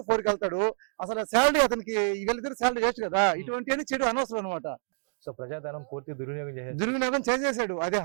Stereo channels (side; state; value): left; silent; digital silence